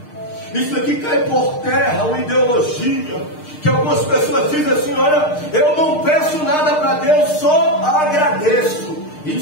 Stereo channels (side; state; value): right; late; 6.6 ms